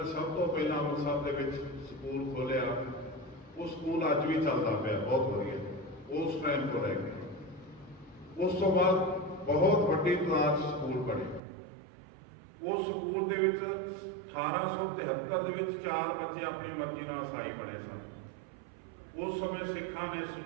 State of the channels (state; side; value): drops out; left; at 11.4 s